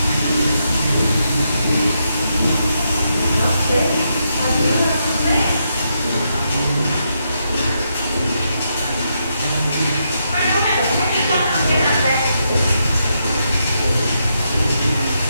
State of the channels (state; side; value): inverted; both; correlation -0.81